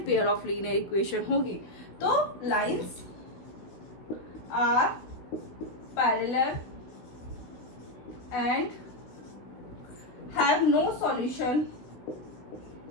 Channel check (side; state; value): right; late; 16 ms